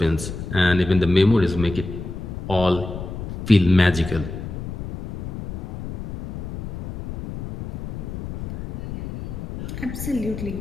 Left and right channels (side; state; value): left; noise; rumble, 8 dB below the sound